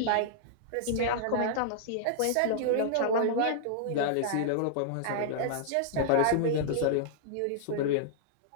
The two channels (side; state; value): both; different; correlation -0.01